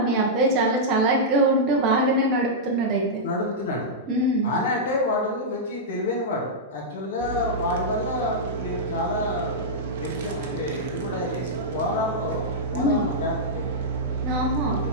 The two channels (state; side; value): normal; both; correlation -0.10